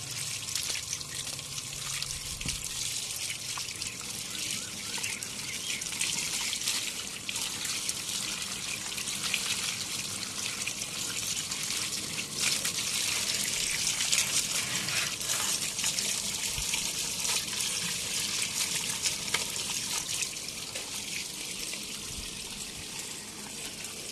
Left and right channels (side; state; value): both; identical; correlation 1.00